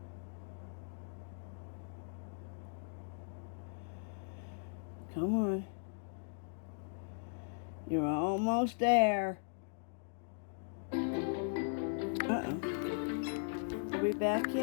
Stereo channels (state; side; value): silent; right; digital silence